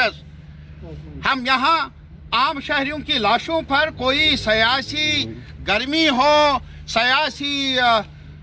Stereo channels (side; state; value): both; identical; correlation 1.00